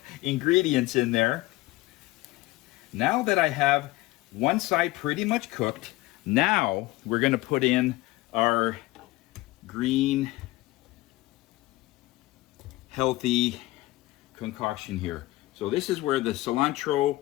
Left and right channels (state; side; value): quieter; right; 19.0 dB